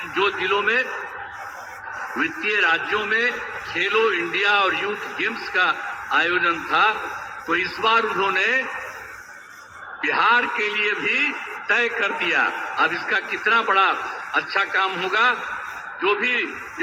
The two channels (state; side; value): identical; both; correlation 1.00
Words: जो जिलों में वित्तीय राज्यों में खेलो इंडिया और यूथ गेम्स का आयोजन था, तो इस बार उन्होंने बिहार के लिए भी तय कर दिया। अब इसका कितना बड़ा अच्छा काम होगा, जो भी